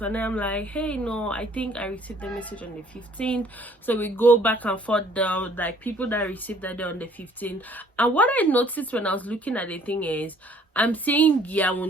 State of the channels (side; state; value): both; normal; correlation 0.59